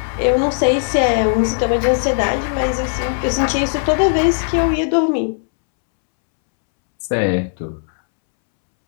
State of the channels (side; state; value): right; silent; 67 dB below the other